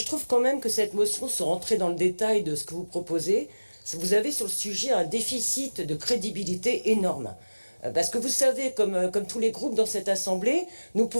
trouve quand même que cette motion, sans rentrer dans le détail de ce que vous proposez, vous avez sur le sujet un déficit de crédibilité énorme. Parce que vous savez, comme tous les groupes dans cette assemblée, nous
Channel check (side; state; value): both; inverted; correlation -1.00